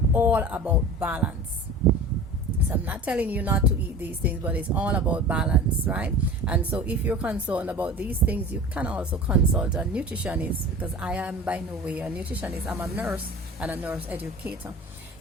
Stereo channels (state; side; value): normal; both; correlation 0.37